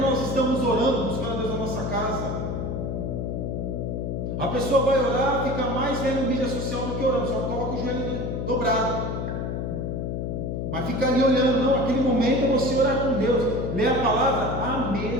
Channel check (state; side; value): noise; left; hum, 2 dB below the sound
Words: nós estamos orando, buscando a Deus na nossa casa. A pessoa vai orar, fica mais vendo mídia social do que orando, só coloca o joelho dobrado. Mas fica ali olhando, não, aquele momento é você orar com Deus, ler a palavra, a